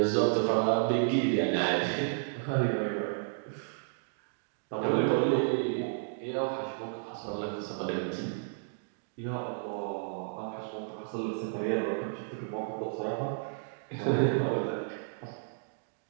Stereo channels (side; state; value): left; silent; digital silence